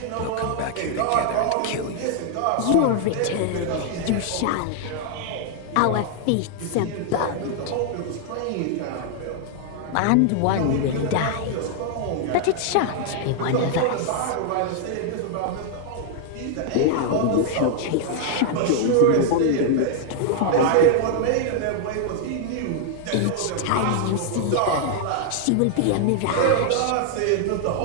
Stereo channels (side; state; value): both; different; correlation -0.01